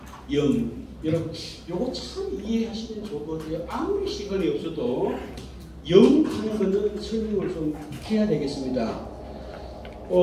염. 여러분, 요거 참 이해하시면 좋을 것 같아요. 아무리 시간이 없어도 염 하는 거는 설명을 좀 해야 되겠습니다.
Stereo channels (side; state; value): both; identical; correlation 1.00